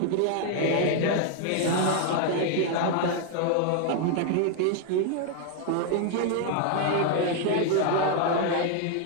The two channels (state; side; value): different; both; correlation 0.00